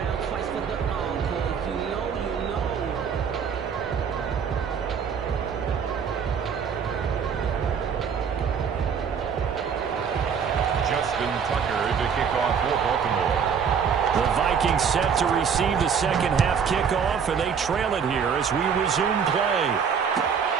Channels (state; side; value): quieter; left; 6.8 dB